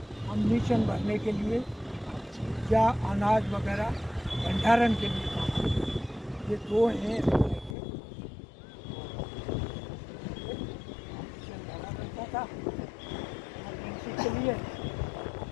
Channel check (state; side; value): drops out; right; at 7.8 s